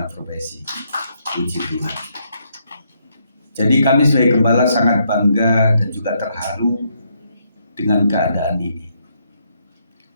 profesi. Puji Tuhan. Jadi kami sebagai gembala sangat bangga dan juga terharu dengan keadaan ini.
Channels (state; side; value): inverted; both; correlation -0.75